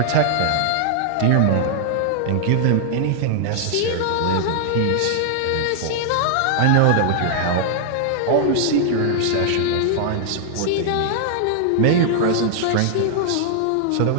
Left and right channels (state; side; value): different; both; correlation -0.01